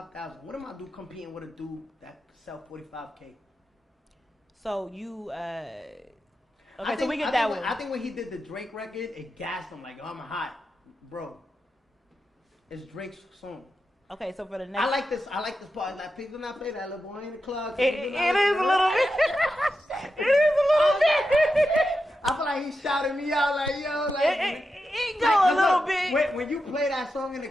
What am I do competing with a dude that sell 45K? So you so we get that one. I think when he did the Drake record, it gassed him like, oh, I'm hot, bro. It's Drake's song. Okay, so for the next, I like this part. Like, people not play that little boy in the club. It is a little bit. It is a little bit. I feel like he shouted me out like, yo, like it go a little bit. When you play that song in the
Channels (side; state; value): both; normal; correlation 0.89